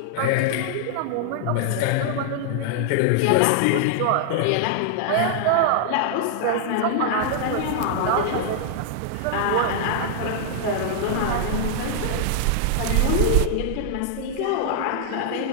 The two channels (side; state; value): both; different; correlation -0.01